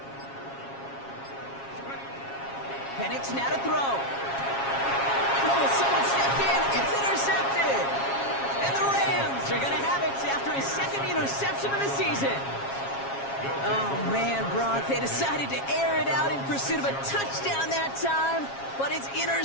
Penix now to throw. Oh, someone stepped in. It's intercepted. And the Rams are going to have it after his second interception of the season. Oh, man, Brock, they decided to air it out in pursuit of a touchdown that time, but it's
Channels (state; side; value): late; right; 7.3 ms